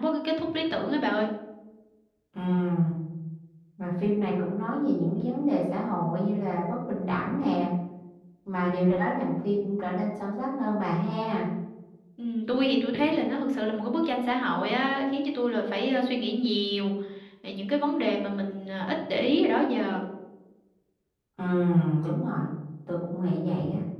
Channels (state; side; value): identical; both; correlation 1.00